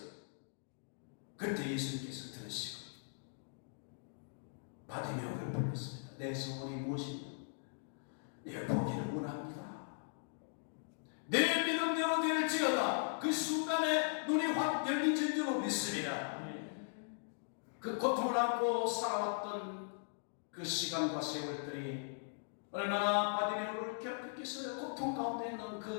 그때 예수님께서 들으시고 바디메오를 불렀습니다. 내 소원이 무엇이냐? 내 보기를 원합니다. 내 믿음대로 될지어다. 그 순간에 눈이 확 열린 줄로 믿습니다. 그 고통을 안고 살아왔던 그 시간과 세월들이 얼마나 바디메오를 괴롭혔겠어요. 고통 가운데 있는 그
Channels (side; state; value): right; silent; digital silence